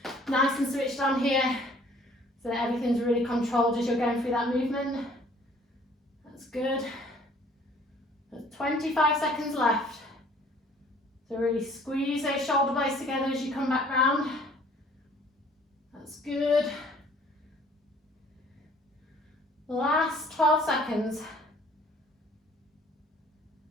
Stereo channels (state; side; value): normal; both; correlation 0.56